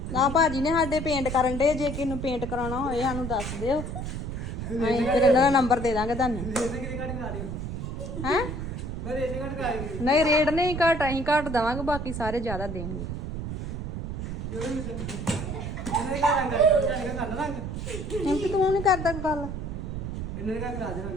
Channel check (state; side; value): noise; right; rumble, 5 dB below the sound